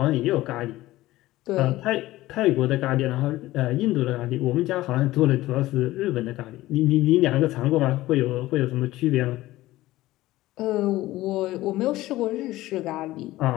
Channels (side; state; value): right; quieter; 16.9 dB